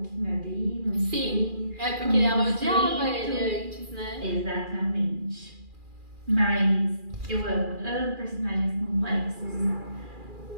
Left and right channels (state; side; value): late; left; 2.4 ms